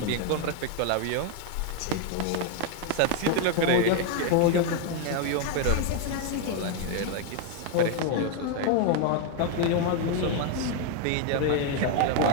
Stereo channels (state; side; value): different; both; correlation 0.00